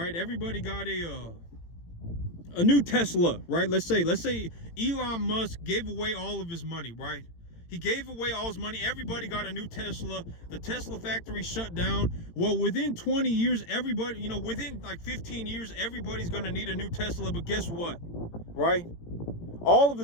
Everybody got a new Tesla, right? Let's say Elon Musk gave away all of his money, right? He gave away all his money. Everybody got a new Tesla. The Tesla factory shut down. Well, within 20 years, everybody, within like 15 years, everybody's going to need a new Tesla. But guess what, right? All of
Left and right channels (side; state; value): right; late; 18 ms